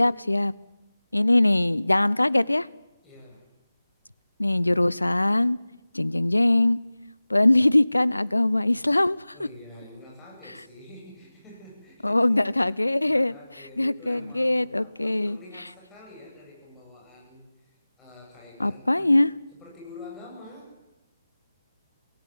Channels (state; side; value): inverted; both; correlation -0.99